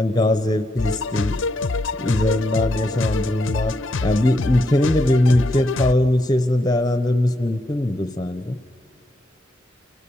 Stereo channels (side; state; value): both; normal; correlation 0.79